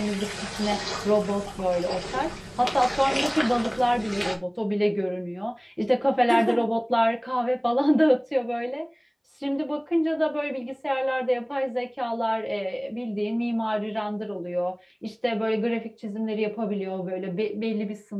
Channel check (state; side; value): identical; both; correlation 1.00